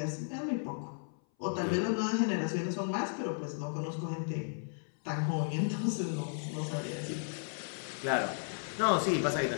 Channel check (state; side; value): silent; right; 55 dB below the other